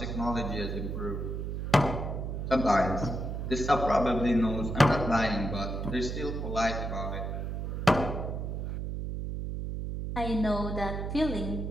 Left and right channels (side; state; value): right; noise; hum, 3 dB below the sound